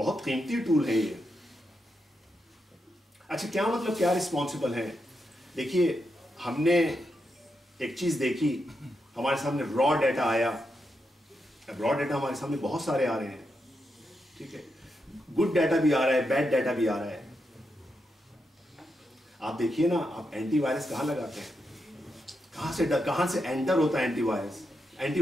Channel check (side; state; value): both; normal; correlation 0.84